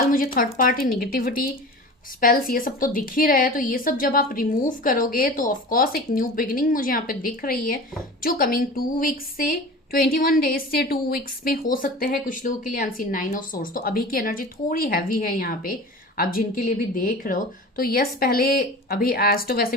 मुझे थर्ड पार्टी निगेटिविटी, स्पेल्स, ये सब तो दिख ही रहा है। तो ये सब जब आप रिमूव करोगे तो ऑफकोर्स एक न्यू बिगिनिंग मुझे यहाँ पे दिख रही है, जो कमिंग 2 वीक्स से 21 डेज से 2 वीक्स में हो सकते हैं कुछ लोगों के लिए। अनसीन 9 ऑफ सोर्स, तो अभी की एनर्जी थोड़ी हैवी है यहाँ पे, आप जिनके लिए भी देख रहे हो। तो यस, पहले अभी एस्ट्रो वैसे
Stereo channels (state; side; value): normal; both; correlation 0.35